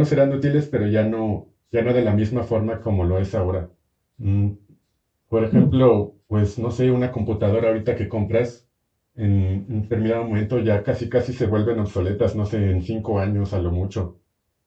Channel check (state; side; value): identical; both; correlation 1.00